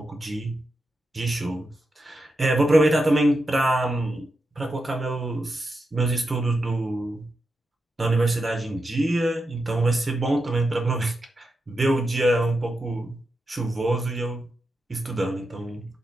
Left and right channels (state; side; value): normal; both; correlation 0.87